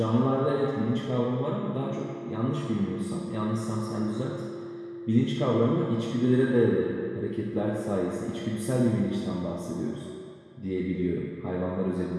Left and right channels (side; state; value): both; identical; correlation 1.00